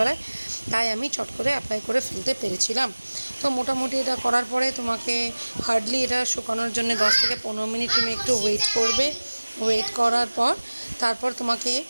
তাই আমি চট করে অ্যাপ্লাই করে ফেলতে পেরেছিলাম। তো মোটামুটি এটা করার পরে তোমাকে হার্ডলি এটা শুকানোর জন্য 10 থেকে 15 মিনিট তুমি একটু ওয়েট করবে। ওয়েট করার পর তারপর তোমাকে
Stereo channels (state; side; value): inverted; both; correlation -1.00